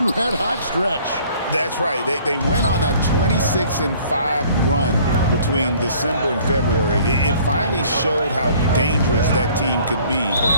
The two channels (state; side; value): inverted; both; correlation -0.55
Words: red-hot stretch. That's right. They went on a 26-5 run between December and February. It finally showed how dangerous that team could be